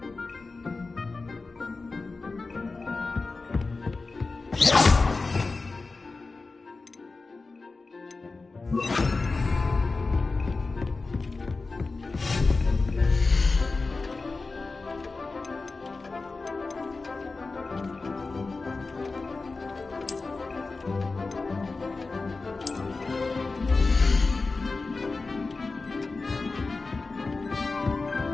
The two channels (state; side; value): quieter; right; 3.8 dB